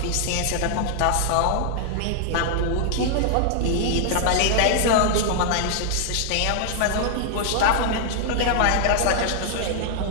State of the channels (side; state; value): both; different; correlation -0.01